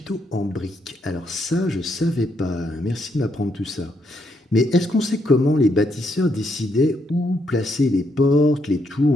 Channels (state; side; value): normal; both; correlation 0.76